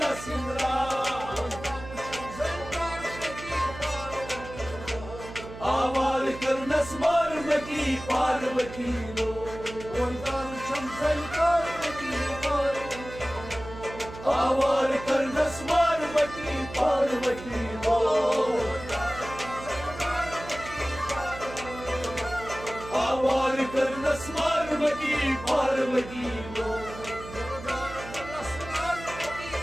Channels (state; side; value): noise; right; hum, 13 dB below the sound